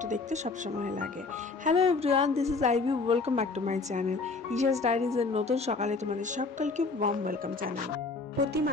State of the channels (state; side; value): quieter; right; 4.0 dB